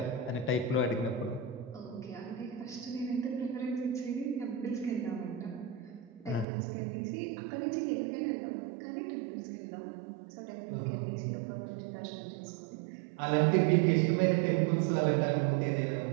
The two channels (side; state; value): left; drops out; at 6.5 s